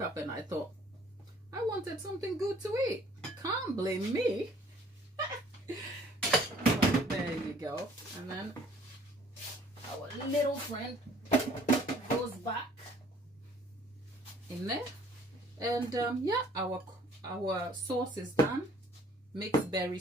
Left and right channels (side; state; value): both; normal; correlation 0.57